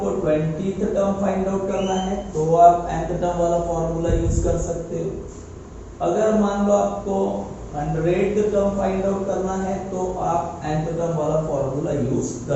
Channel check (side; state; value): both; identical; correlation 1.00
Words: 20th टर्म फाइंड आउट करना है तो आप nth टर्म वाला फॉर्मूला यूज कर सकते हो। अगर मान लो आपको 100th टर्म फाइंड आउट करना है तो आप nth टर्म वाला फॉर्मूला यूज